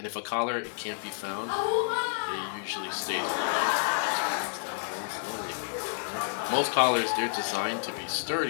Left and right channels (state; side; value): silent; right; digital silence